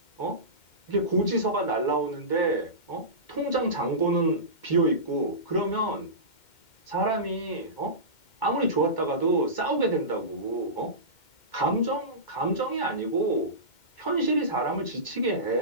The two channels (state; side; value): late; right; 2.1 ms